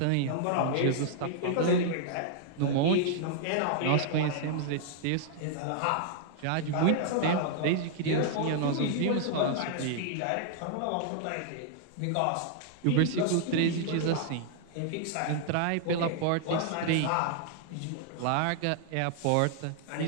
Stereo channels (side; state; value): both; different; correlation -0.01